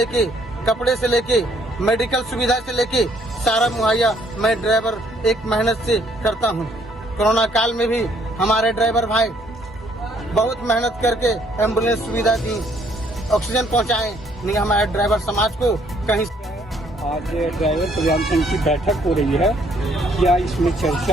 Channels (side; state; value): both; normal; correlation 0.66